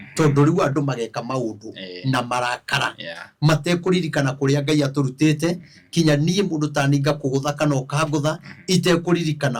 tondu riu andu mageka maundu na marakara matekuririkana kuria Ngai aturutite kinya nie mundu taninga kugutha kana ukangutha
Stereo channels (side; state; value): both; identical; correlation 1.00